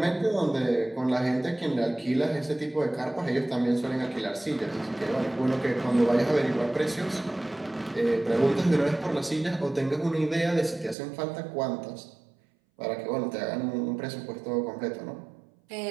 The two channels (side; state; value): left; drops out; at 11.0 s